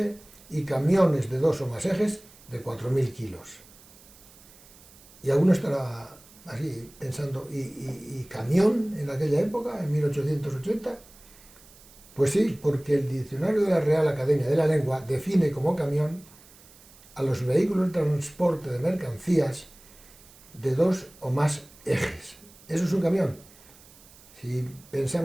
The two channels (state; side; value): noise; right; hiss, 24 dB below the sound